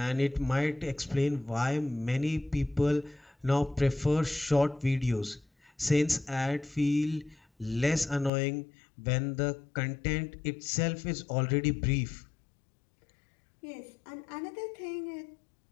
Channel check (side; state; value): right; drops out; at 8.3 s